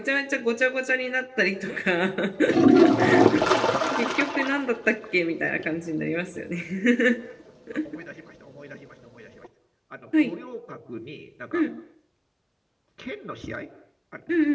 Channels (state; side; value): identical; both; correlation 1.00